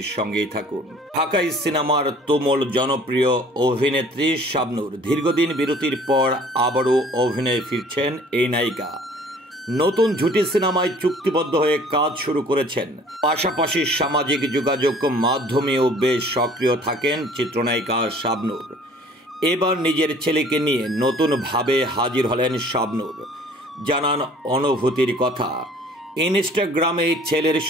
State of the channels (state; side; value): normal; both; correlation 0.52